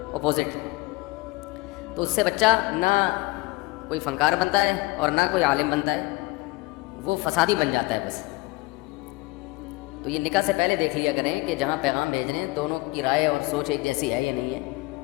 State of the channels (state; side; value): quieter; right; 23.3 dB